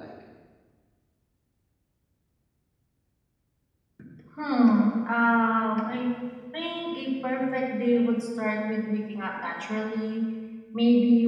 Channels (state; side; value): identical; both; correlation 1.00